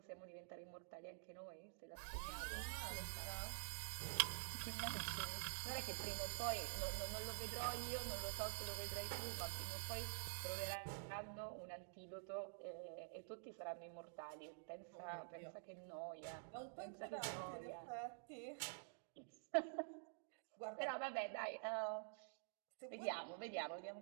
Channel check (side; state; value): left; silent; digital silence